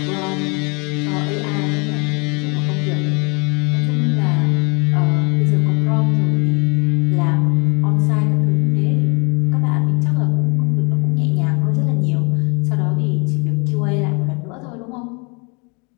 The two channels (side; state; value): right; quieter; 32.1 dB